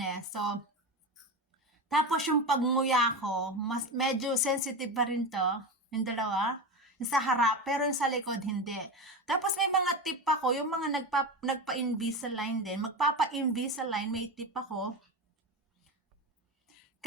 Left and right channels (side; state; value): both; normal; correlation 0.21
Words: So, tapos yung pagnguya ko, medyo sensitive pa rin to, yung dalawa, yung sa harap, pero yung sa likod hindi. Tapos may mga tip ako, yung mga nagpa-Invisalign din, magpapa-Invisalign, may tip ako.